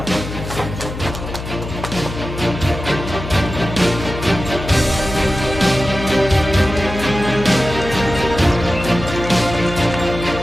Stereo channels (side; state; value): left; noise; hum, 8 dB below the sound